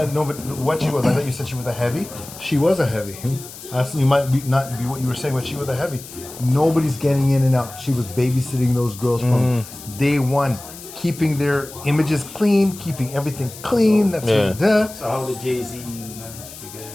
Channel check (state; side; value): noise; left; hiss, 15 dB below the sound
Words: but what she was, I thought you said she was a heavy. She was a heavy. You might not be what you were saying, but she was a heavy. Nobody's getting in and out. She was babysitting those girls from day one, keeping their images clean, keeping everything clean. That's So how did Jay-Z manage to get it?